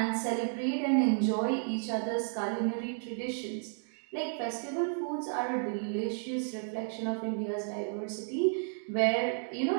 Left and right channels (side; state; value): left; silent; 56 dB below the other